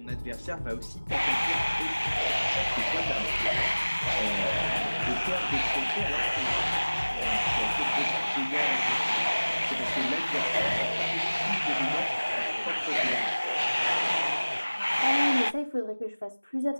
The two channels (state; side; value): inverted; both; correlation -1.00